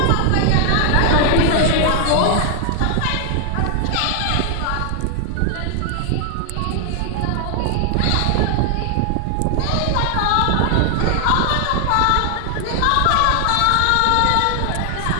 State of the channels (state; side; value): different; both; correlation 0.00